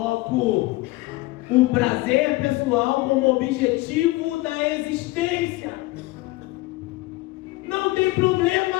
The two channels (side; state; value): right; quieter; 20.4 dB